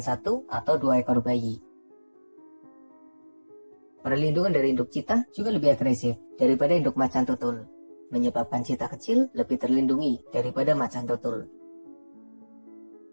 1 atau 2 ekor bayi. Perlindungan dari induk Cheetah juga lebih agresif daripada induk macan tutul, menyebabkan Cheetah kecil lebih terlindungi daripada macan tutul.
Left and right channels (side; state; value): both; inverted; correlation -1.00